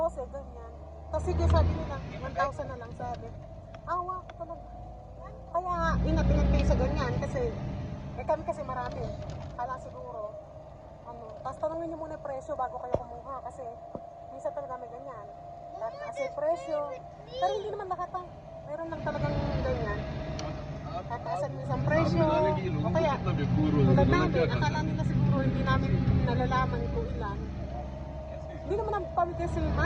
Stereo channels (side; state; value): both; identical; correlation 1.00